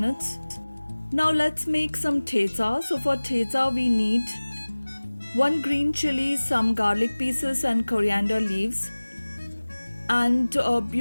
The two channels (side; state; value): both; inverted; correlation -1.00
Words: Now let's make some thecha. So for thecha we need 1 green chili, some garlic pieces and coriander leaves. And